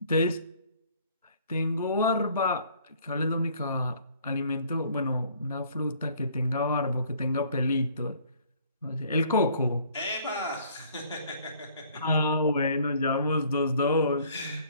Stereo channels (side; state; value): both; inverted; correlation -0.58